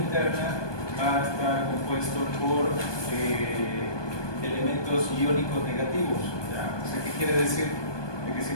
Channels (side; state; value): right; late; 1.2 ms